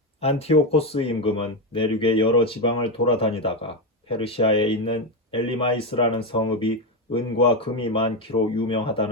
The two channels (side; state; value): both; normal; correlation 0.10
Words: 안티오코스 임금은 내륙의 여러 지방을 돌아다니다가 페르시아에 있는 엘리마이스라는 성읍이 은과 금이 많기로